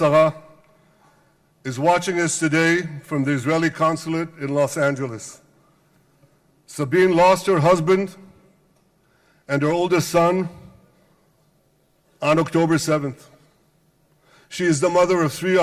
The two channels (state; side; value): identical; both; correlation 1.00